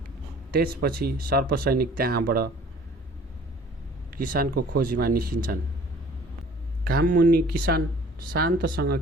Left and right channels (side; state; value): both; normal; correlation 0.51